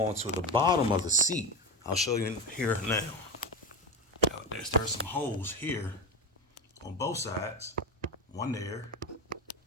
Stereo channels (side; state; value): both; normal; correlation 0.20